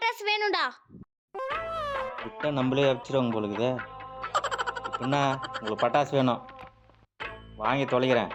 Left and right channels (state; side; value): identical; both; correlation 1.00